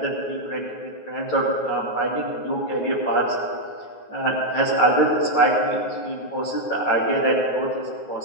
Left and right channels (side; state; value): right; late; 9.4 ms